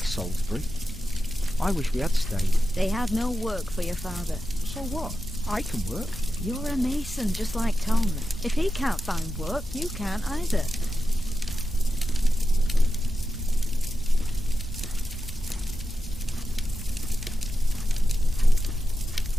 I wish we had stayed. They have no work for your father. So what? I can work. You're a mason, just like Tom. If he can't find work, you can't either.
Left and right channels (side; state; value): both; normal; correlation 0.90